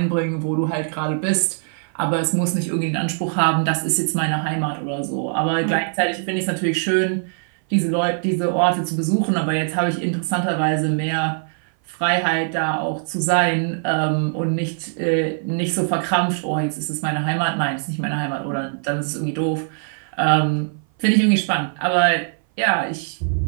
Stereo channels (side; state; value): left; silent; 58 dB below the other